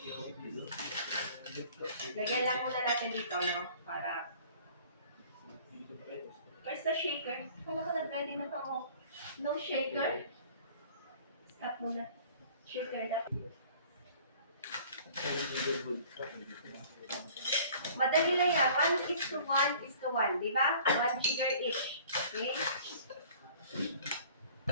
Lagyan lang muna natin dito, no? Para... Where's the shaker? Kala ko nag-ready na pa mo. No shaker? Stop muna. Shaker na. Madali lang yan. 1:1:1. Diba? 1 jigger each. Okay?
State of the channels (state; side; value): inverted; both; correlation -0.50